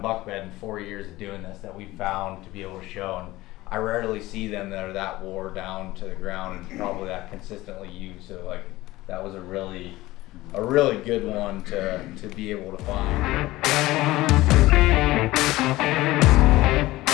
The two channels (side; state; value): right; quieter; 18.1 dB